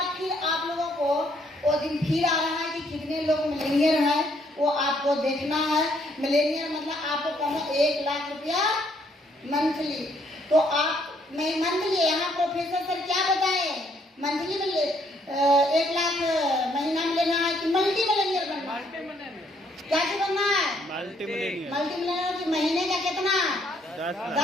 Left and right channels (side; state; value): both; normal; correlation 0.68